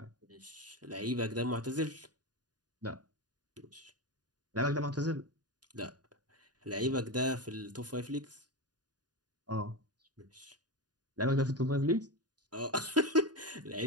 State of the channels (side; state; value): left; late; 0.69 ms